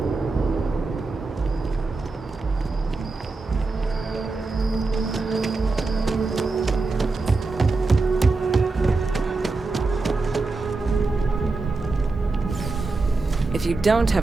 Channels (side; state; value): left; quieter; 3.7 dB